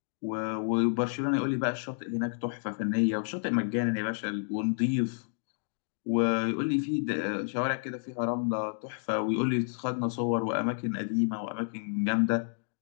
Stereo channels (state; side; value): silent; right; digital silence